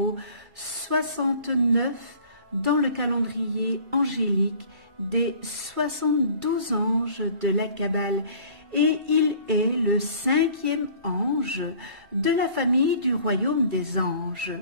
69 dans le calendrier angélique des 72 anges de la Kabbale et il est le 5e ange de la famille du royaume des anges.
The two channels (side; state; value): left; late; 2.3 ms